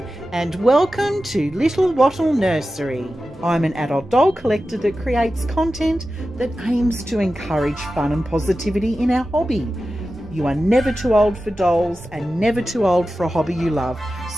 and welcome to Little Wattle Nursery. I'm an adult doll collector that creates content that aims to encourage fun and positivity in our hobby. You are never too old for dolls and never too old for a hobby you love,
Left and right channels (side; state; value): both; normal; correlation 0.93